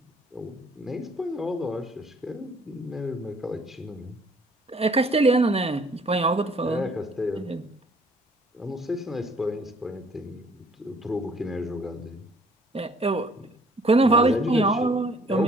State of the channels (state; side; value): normal; both; correlation 0.59